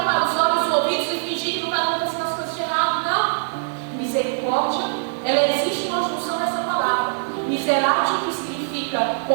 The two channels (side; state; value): left; silent; digital silence